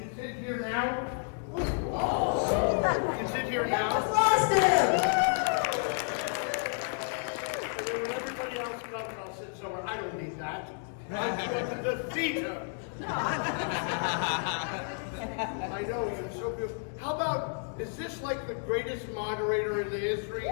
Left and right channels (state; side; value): silent; right; 57 dB below the other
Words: sit here now. I can sit here now. Just lost him. And then when everybody else comes, I'll sit somewhere. I don't need that. I'm going to defeat him. I know, you're so beautiful. How about, is this like the greatest moderator in the history?